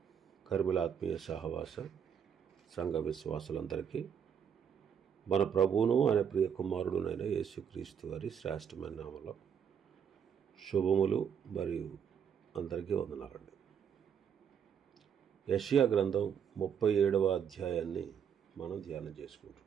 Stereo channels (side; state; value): left; quieter; 7.8 dB